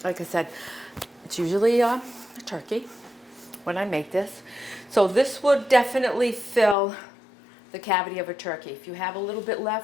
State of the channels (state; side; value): drops out; right; at 6.8 s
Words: Like I said, it's usually a turkey when I make this. So this would definitely fill the cavity of a turkey. If you have a little bit